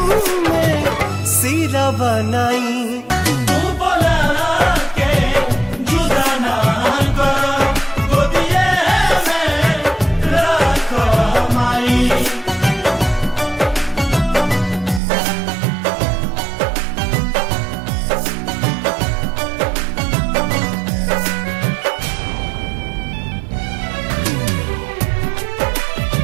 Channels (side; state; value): left; drops out; at 15.0 s